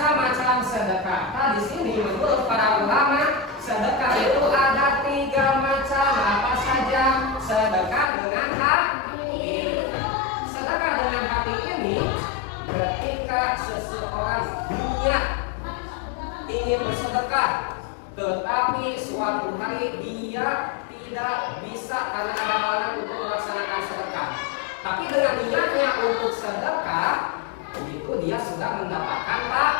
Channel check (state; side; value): drops out; right; at 8.1 s